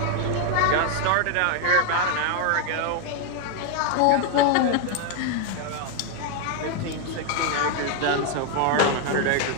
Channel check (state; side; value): different; both; correlation 0.01